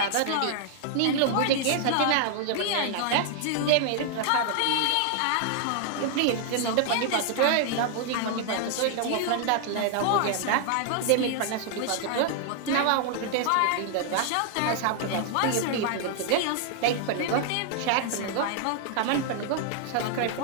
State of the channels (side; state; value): both; different; correlation 0.00